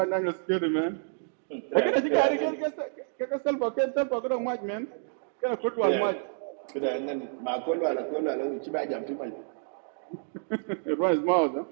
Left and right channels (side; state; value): left; silent; digital silence